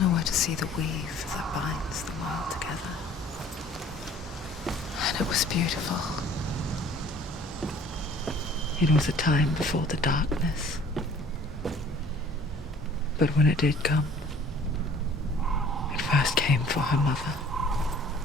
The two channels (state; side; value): normal; both; correlation 0.52